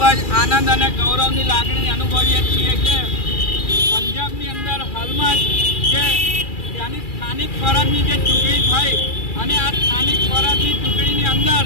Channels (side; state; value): right; late; 2.4 ms